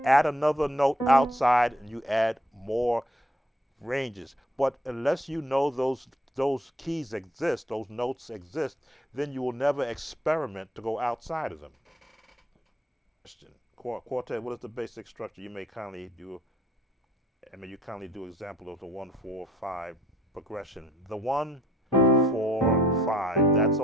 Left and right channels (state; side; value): normal; both; correlation 0.62